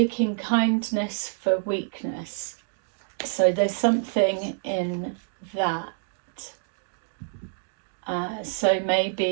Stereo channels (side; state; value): left; silent; digital silence